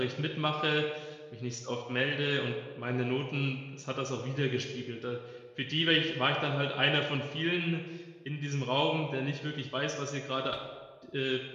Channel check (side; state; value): both; identical; correlation 1.00